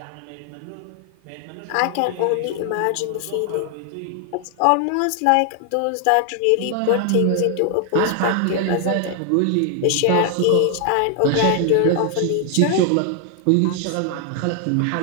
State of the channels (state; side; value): different; both; correlation 0.00